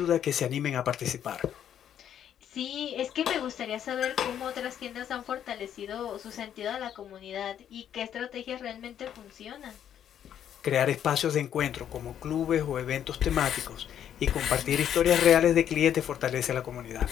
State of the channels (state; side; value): quieter; right; 9.8 dB